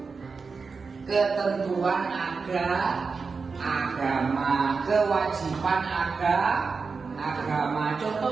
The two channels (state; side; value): quieter; left; 4.8 dB